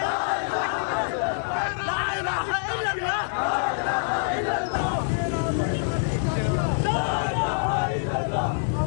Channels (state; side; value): silent; right; 61 dB below the other